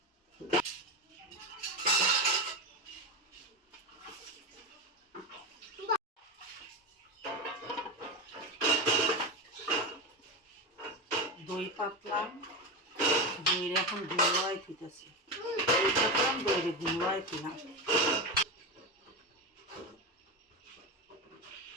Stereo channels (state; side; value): normal; both; correlation 0.17